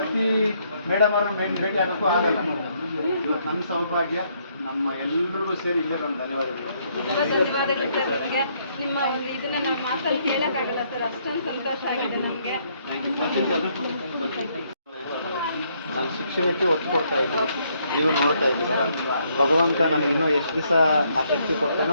ಮೇಡಮ್ ಅವ್ರನ್ನ ಭೇಟಿ ಆಗೋಕ್ಕೂ ಆಗಲ್ಲ. ಇವತ್ತು ನಮ್ಮ ಸೌಭಾಗ್ಯ, ನಮ್ಮ ಎಲ್ರಿಗೂ ಸೇರಿ ಇಲ್ಲೇ ನಮ್ಮ ಧನ್ಯವಾದಗಳು. ನಿಮ್ಮ ಇದನ್ನ ನಾವು ಮಾತಲ್ಲಿ ಹೇಳಕ್ಕಾಗಲ್ಲ ಸರ್, ಅಷ್ಟೊಂದು ಸಂತೋಷ ಆಗಿದೆ ನಮಗೆ. ನಾನು ಶಿಕ್ಷಣಕ್ಕೆ ಒತ್ತು ಕೊಡ್ತಾ ಇದ್ದೀನಿ, ನೀವು ನೋಡ್ತಾ ಇದ್ದೀರಾ. ಭಗವಂತ ನನಗೆ ಇನ್ನೂ ಎಷ್ಟು ದಿವಸ ಆ ಶಕ್ತಿ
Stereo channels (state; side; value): inverted; both; correlation -0.71